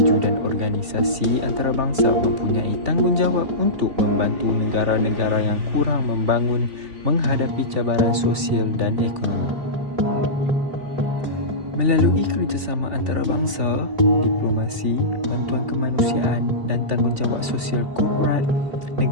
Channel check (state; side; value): late; left; 3.4 ms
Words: dan organisasi antarabangsa mempunyai tanggungjawab untuk membantu negara-negara yang kurang membangun menghadapi cabaran sosial dan ekonomi. Melalui kerjasama antarabangsa, diplomasi, bantuan kemanusiaan dan tanggungjawab sosial korporat,